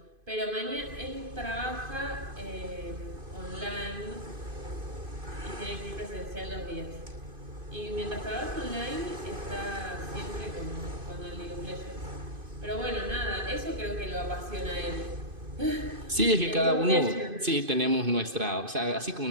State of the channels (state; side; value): late; left; 2.5 ms